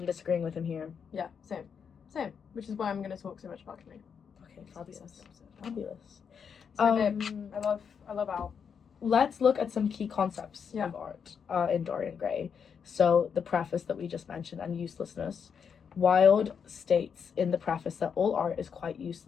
disagreeing with him here. yeah, same, which is why I'm going to talk so much about Camille. Okay, It's the best fabulous. episode. Fabulous. So babe, I love Al. Let's look at some key concepts Yeah. of art in Dorian Gray. So the preface that we just mentioned and uselessness. Wilde states in the preface that all art is quite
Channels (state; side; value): quieter; right; 6.8 dB